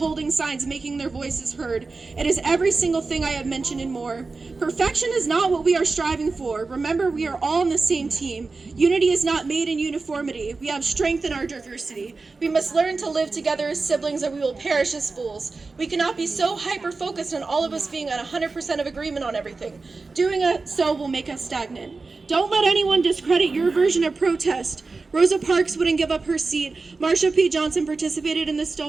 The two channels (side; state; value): left; quieter; 4.0 dB